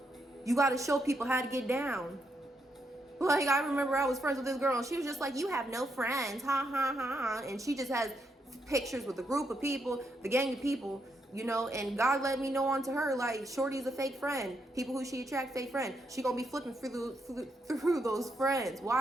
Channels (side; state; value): both; normal; correlation 0.80